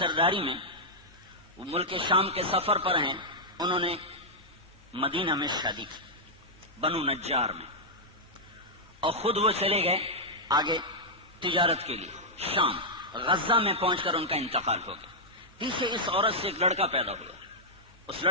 میں وہ ملک شام کے سفر پر ہیں، انہوں نے مدینہ میں شادی کی، بنو نجار میں، اور خود وہ چلے گئے آگے تجارت کے لیے شام۔ غزہ میں پہنچ کر ان کا انتقال ہو گیا۔ پیچھے اس عورت سے ایک لڑکا پیدا ہوا، اس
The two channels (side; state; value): both; normal; correlation -0.07